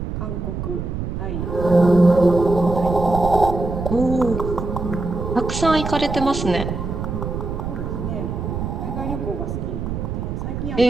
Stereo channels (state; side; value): noise; right; rumble, 4 dB below the sound